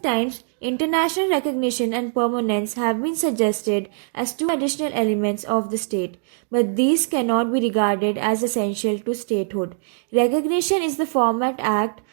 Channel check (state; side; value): silent; left; digital silence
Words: times, international recognition and permanence have been suggested as two additional elements of the state, but these cannot be regarded as essential to statehood. Recognition is the formal act